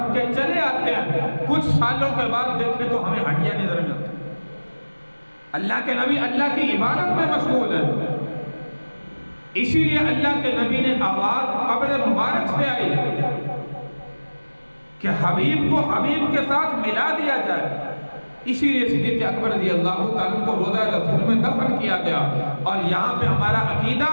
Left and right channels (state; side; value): inverted; both; correlation -1.00